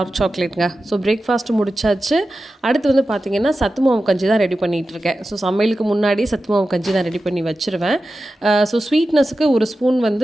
சாக்லேட்டுங்க. ஸோ பிரேக்ஃபாஸ்ட்டு முடிச்சாச்சு. அடுத்து வந்து பார்த்திங்கன்னா சத்து மாவு கஞ்சி தான் ரெடி பண்ணிகிட்ருக்கேன். ஸோ சமையலுக்கு முன்னாடி சத்து மாவு கஞ்சி தான் ரெடி பண்ணி வச்சுருவேன். ஸோ ஸ்வீட்னஸுக்கு ஒரு ஸ்பூன்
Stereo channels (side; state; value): both; normal; correlation 0.93